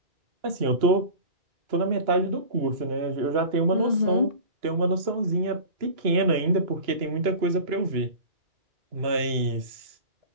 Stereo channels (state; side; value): late; left; 2.9 ms